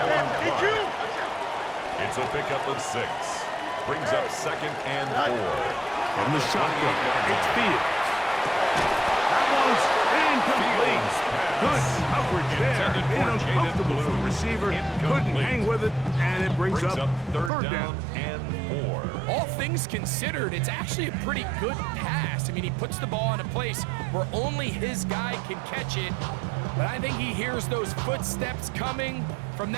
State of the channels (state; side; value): drops out; left; at 17.5 s